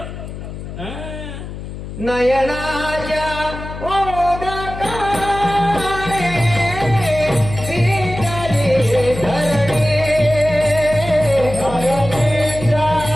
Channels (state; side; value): noise; left; hum, 10 dB below the sound